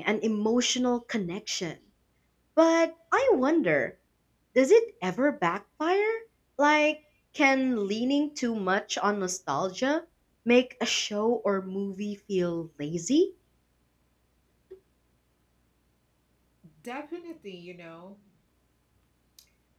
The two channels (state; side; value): identical; both; correlation 1.00